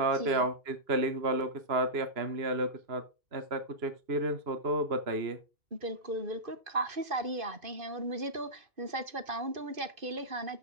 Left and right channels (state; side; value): late; left; 2.5 ms